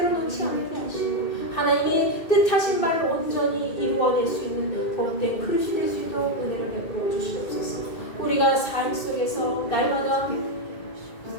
놓지 않게 하시고 하나님이 뜻하신 바를 온전히 이루어낼 수 있는 복된 그릇이 될 수 있도록 은혜를 베풀어 주시옵소서. 우리가 삶 속에서 날마다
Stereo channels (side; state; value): right; late; 2.2 ms